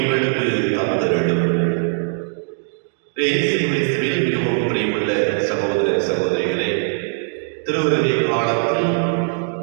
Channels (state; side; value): silent; left; 66 dB below the other